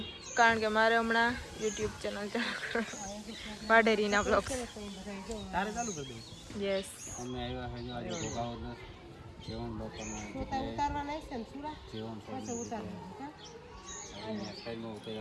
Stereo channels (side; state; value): both; identical; correlation 1.00